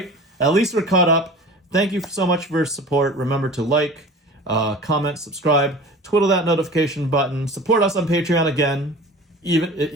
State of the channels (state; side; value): normal; both; correlation 0.39